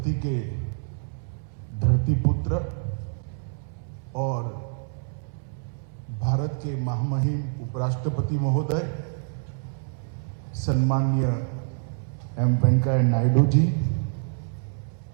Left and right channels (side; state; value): left; silent; 60 dB below the other